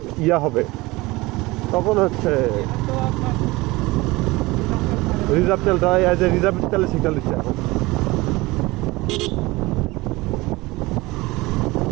ইয়া হবে তখন হচ্ছে রিজার্ভ তেলটা, রিজার্ভ তেলের সিগন্যাল দিচ্ছে এখন।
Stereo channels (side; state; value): left; quieter; 21.4 dB